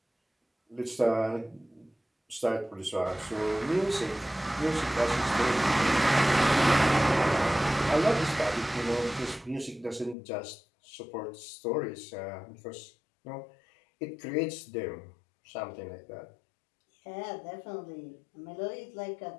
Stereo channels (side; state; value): right; drops out; at 10.2 s